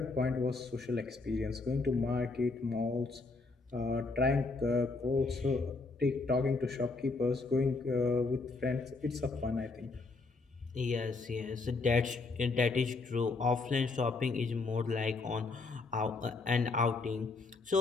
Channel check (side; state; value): right; quieter; 3.8 dB